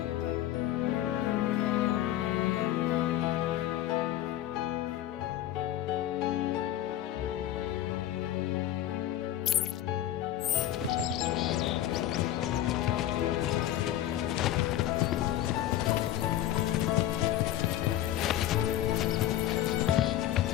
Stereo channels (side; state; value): right; quieter; 12.9 dB